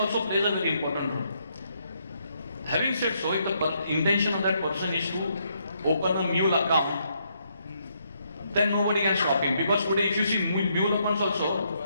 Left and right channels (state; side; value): inverted; both; correlation -0.75